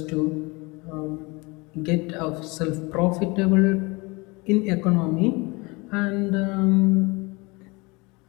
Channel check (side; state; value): right; quieter; 26.0 dB